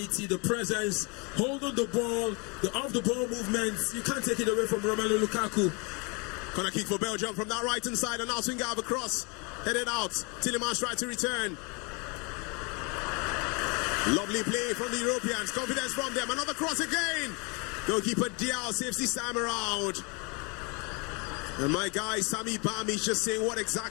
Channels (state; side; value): quieter; right; 31.5 dB